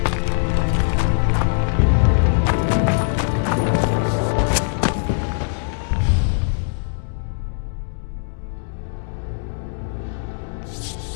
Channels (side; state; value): right; silent; digital silence